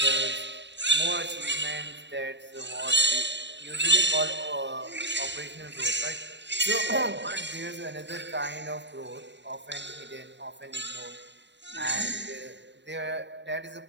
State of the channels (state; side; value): late; left; 0.52 ms